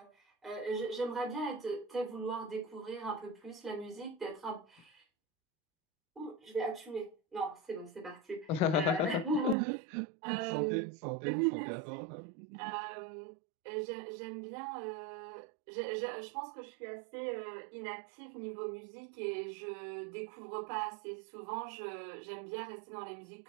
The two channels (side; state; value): left; drops out; at 9.6 s